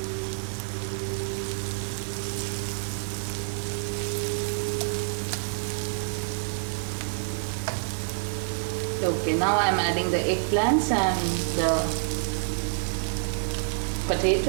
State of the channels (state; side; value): silent; left; 55 dB below the other